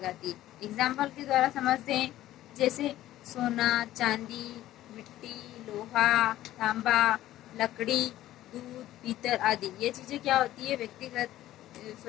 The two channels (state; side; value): quieter; right; 14.2 dB